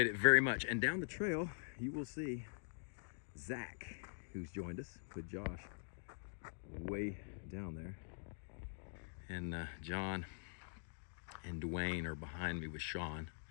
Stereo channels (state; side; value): silent; right; digital silence